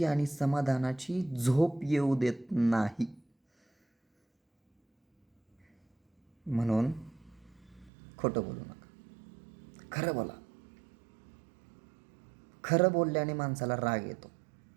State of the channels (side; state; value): left; drops out; at 7.9 s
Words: आणि समाधानाची झोप येऊ देत नाही. म्हणून खोटं बोलू नका, खरं बोला. खरं बोलल्याने माणसाला राग येतो.